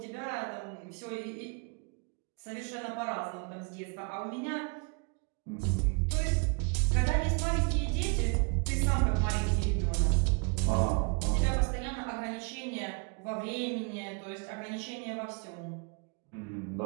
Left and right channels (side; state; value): left; quieter; 35.1 dB